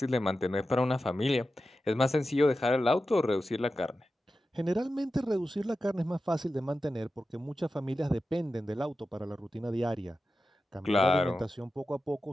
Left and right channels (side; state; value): both; normal; correlation 0.92